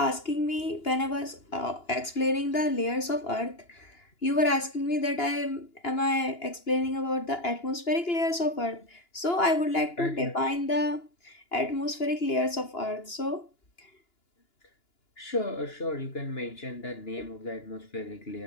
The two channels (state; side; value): late; right; 2.9 ms